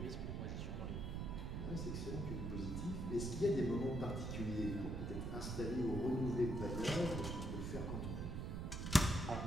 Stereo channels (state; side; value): noise; right; rumble, 3 dB below the sound